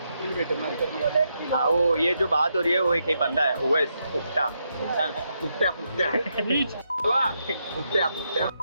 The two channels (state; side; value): inverted; both; correlation -0.81